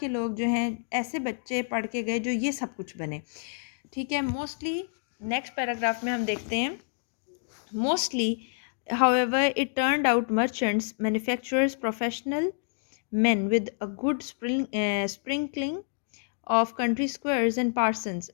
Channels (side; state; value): right; silent; digital silence